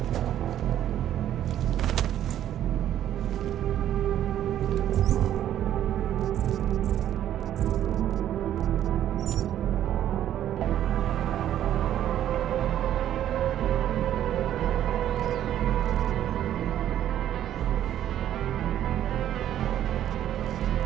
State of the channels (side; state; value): left; quieter; 11.3 dB